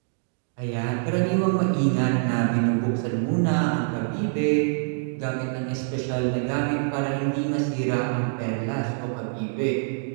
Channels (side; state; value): left; silent; digital silence